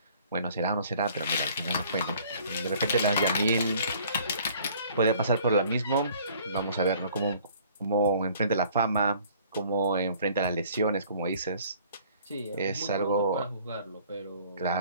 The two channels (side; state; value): both; inverted; correlation -0.55